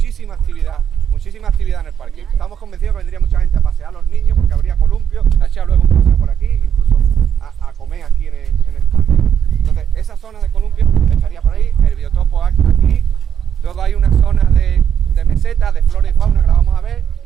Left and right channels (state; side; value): quieter; left; 8.6 dB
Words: actividad en el parque. Estamos convencidos que vendría mucha gente a pasear a los niños, porque habría columpio, a echar luego un paseo por aquí, incluso a comer aquí en el parque. Entonces, esa zona de columpio estaría por ahí, el biotopo aquí. Luego hay una zona de meseta, de flora y fauna que la vamos a ver,